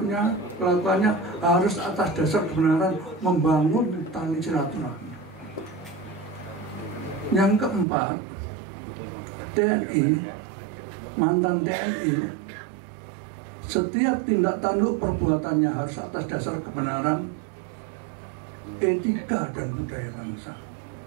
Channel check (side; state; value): left; drops out; at 7.9 s